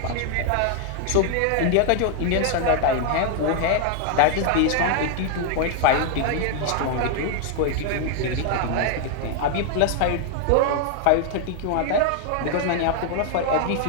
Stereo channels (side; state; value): both; different; correlation 0.00